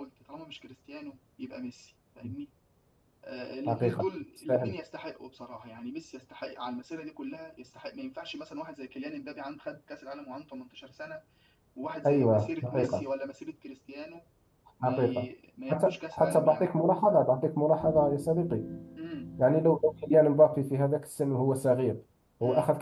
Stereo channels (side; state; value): both; identical; correlation 1.00